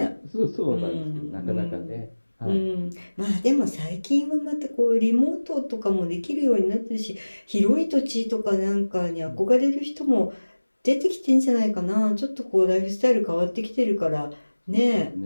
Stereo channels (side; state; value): both; inverted; correlation -1.00